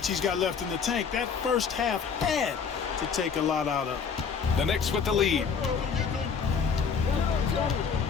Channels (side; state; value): right; quieter; 6.1 dB